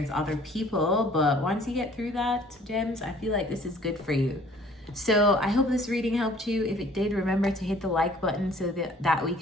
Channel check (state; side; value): normal; both; correlation 0.55